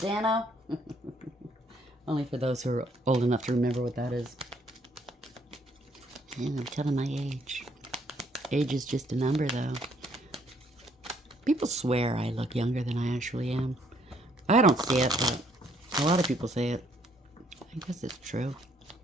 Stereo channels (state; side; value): normal; both; correlation 0.67